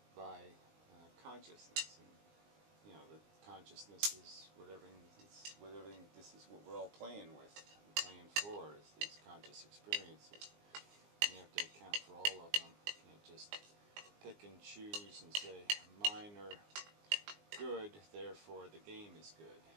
by consciousness, and the consciousness is whatever. This is what we're all playing with, and playing for, is these conscious experiences. And you have to account for all of them. You can't just pick and choose and say mine are good, therefore the game is good.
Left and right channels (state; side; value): late; left; 19 ms